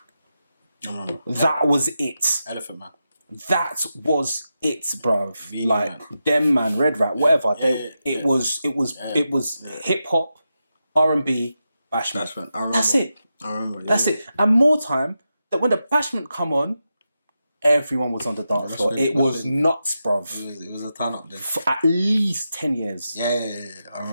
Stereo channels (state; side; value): inverted; both; correlation -0.89